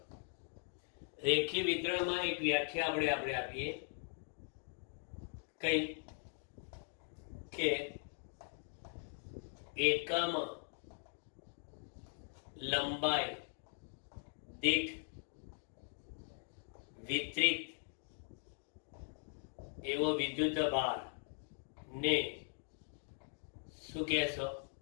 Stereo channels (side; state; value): right; silent; 51 dB below the other